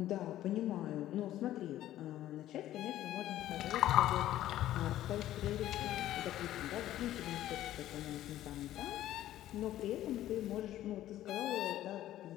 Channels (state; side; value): quieter; right; 13.5 dB